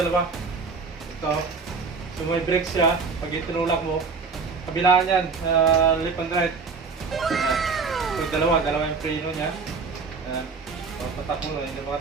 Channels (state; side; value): quieter; left; 4.8 dB